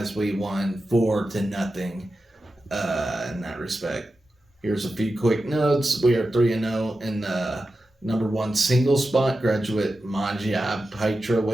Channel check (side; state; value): both; normal; correlation 0.92